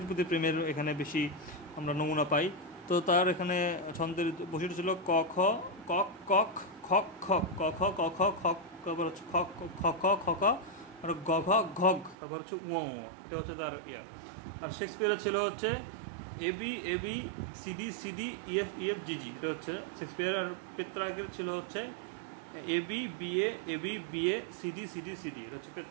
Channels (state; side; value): drops out; left; at 12.2 s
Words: প্রতি প্রেমের এখানে বেশি আমরা নমুনা পাই। তো তার এখানে ছন্দের বৈশিষ্ট্য ছিল ক খ কক কক খক খক, ক খ ক খ খক, তারপর হচ্ছে খ খ খ খ খ আর গ ঘ ঘগ, তারপর হচ্ছে উ, এটা হচ্ছে তার ইয়া। আর শেক্সপিয়ারের ছিল হচ্ছে এবি সিডি ইএফ জিজি, এটা হচ্ছে শেক্সপিয়ার। আর পেত্রাকের ছিল হচ্ছে এবি বিএ সিডি, এটা হচ্ছে